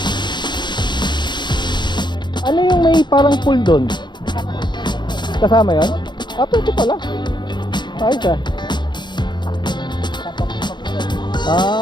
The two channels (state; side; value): late; right; 0.22 ms